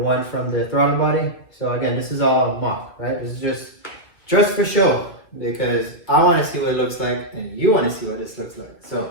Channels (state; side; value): late; right; 2.0 ms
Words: from the throttle body. So again, this is all mock, right? This is just for show because I want to see what it looks like and you want to see what this looks like. So